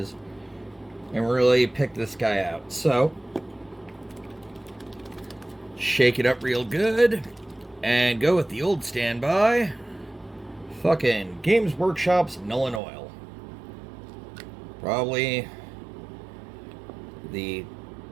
and really pick this guy out. So, shake it up real good and go with the old standby. Fucking Games Workshop's Nuln Oil. Probably the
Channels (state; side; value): drops out; left; at 12.8 s